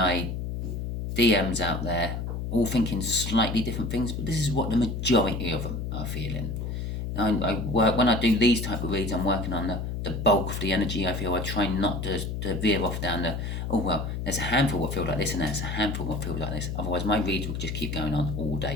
DMs out there, all thinking slightly different things, but this is what the majority of them are feeling. When I do these type of reads, I'm working on the bulk of the energy. I feel I try not to veer off down the, oh well, there's a handful what feel like this and there's a handful what feels like this. Otherwise my reads will just keep going on all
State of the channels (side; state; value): left; noise; hum, 4 dB below the sound